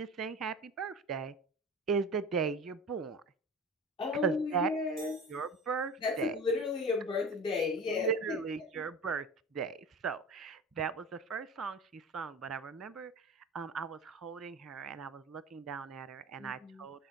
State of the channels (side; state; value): both; normal; correlation 0.34